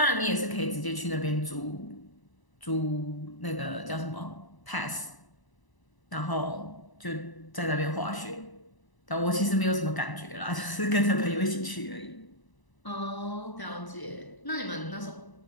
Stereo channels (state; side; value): late; right; 1.0 ms